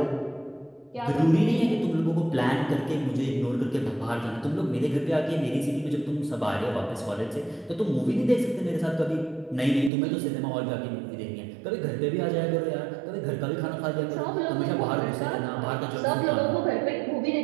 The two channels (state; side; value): drops out; left; at 9.9 s